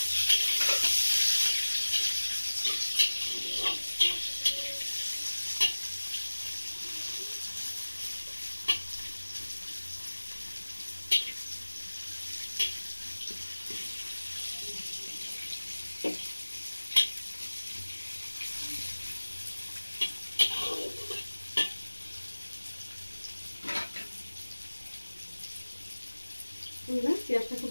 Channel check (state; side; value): inverted; both; correlation -1.00